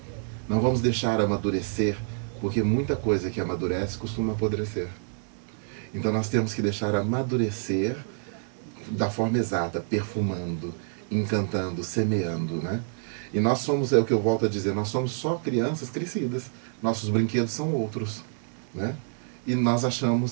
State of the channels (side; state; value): left; silent; digital silence